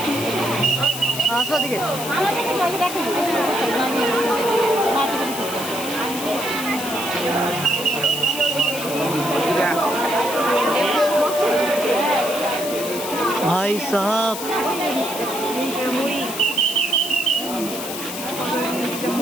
আসো দিকে। ভাই সাহেব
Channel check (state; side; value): noise; left; hiss, 8 dB below the sound